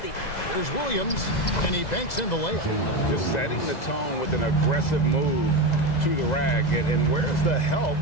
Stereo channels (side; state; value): right; late; 2.0 ms